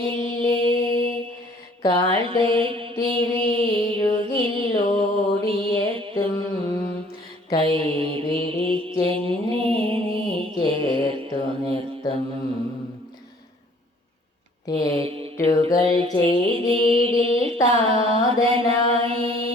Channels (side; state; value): both; normal; correlation 0.57